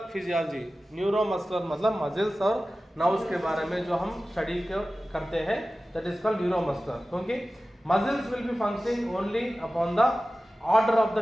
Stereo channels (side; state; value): both; normal; correlation 0.96